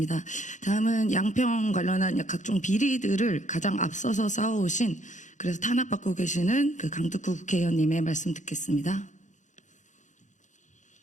다음은 양평 관련한 각종 비리들을 가장 앞서서 싸워오신 그래서 탄압받고 계시는 그 강특구 국회의원님의 말씀 듣겠습니다.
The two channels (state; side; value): late; right; 0.36 ms